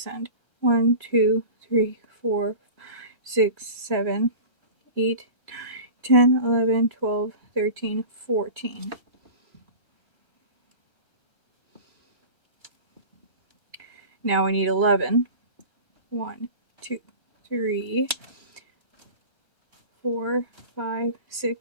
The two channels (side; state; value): right; late; 1.3 ms